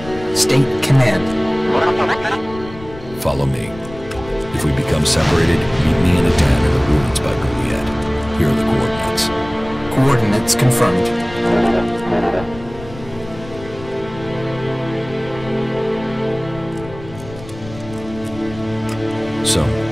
State command. Follow me. If we become separated, meet me in a den in the ruins by Juliet. Here are the coordinates. Coordinates confirmed. So,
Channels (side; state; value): left; noise; rumble, 16 dB below the sound